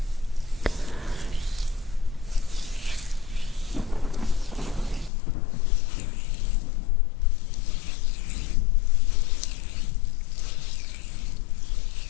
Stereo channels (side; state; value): right; drops out; at 5.1 s